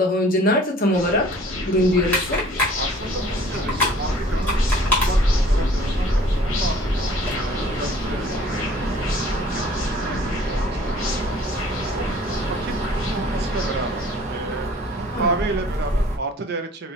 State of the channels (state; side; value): normal; both; correlation 0.52